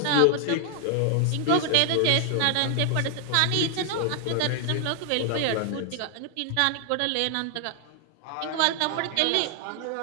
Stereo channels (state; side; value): different; both; correlation 0.00